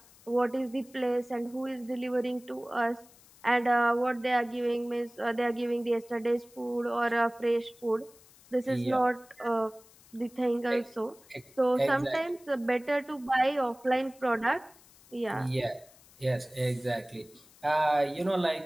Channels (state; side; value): noise; left; hiss, 25 dB below the sound